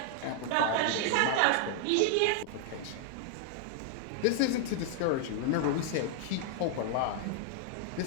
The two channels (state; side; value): different; both; correlation 0.00